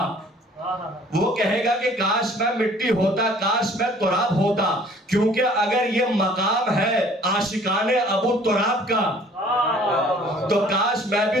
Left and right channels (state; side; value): normal; both; correlation 0.54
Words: وہ کہے گا کہ کاش میں مٹی ہوتا, کاش میں تراب ہوتا, کیونکہ اگر یہ مقام ہے عاشقان ابو تراب کا تو کاش میں